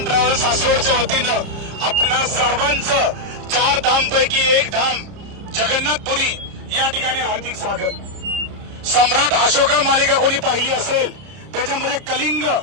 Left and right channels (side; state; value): left; late; 30 ms